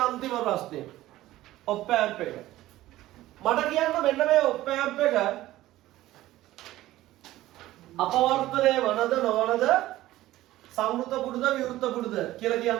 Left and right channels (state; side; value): quieter; left; 15.7 dB